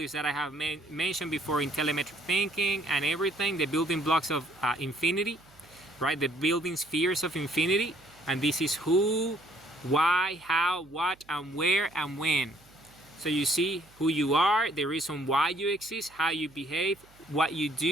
that I have mentioned before in telemetric thinking and everything, the building blocks of infinity, right? The building spheres of infinity. And this is who, why, how, what, and where, and when. So you see who you are, the reason why you exist, how you behave, what you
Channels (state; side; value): noise; right; hum, 27 dB below the sound